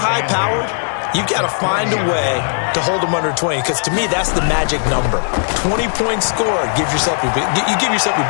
you've got to find a way to hold them under 20. Because to me, that's the magic number. 20 points scored, you give yourself your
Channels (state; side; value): silent; right; digital silence